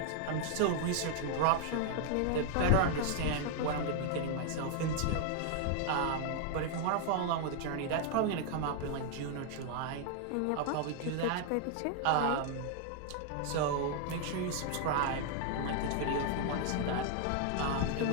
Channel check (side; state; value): both; different; correlation 0.00